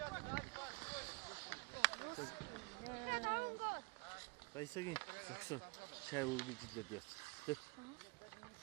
야, 나온 거. Baysagin. Saksı. Çay oldu gidiyor diyor. Dur.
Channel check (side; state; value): left; quieter; 27.6 dB